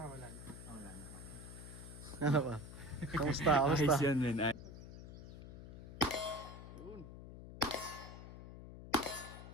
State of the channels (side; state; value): left; noise; hum, 13 dB below the sound